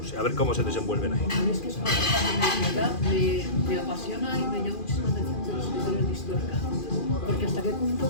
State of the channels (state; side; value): late; right; 2.4 ms